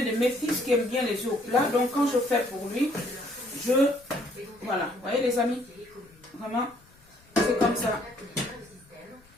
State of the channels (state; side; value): noise; left; rumble, 29 dB below the sound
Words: de mes fils qui aime bien les œufs au plat, donc quand je fais pour lui, voilà, vous voyez les amis, vraiment, c'est comme ça.